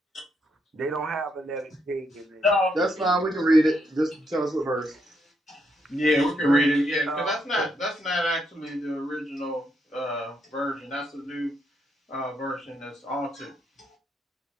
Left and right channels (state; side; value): normal; both; correlation 0.77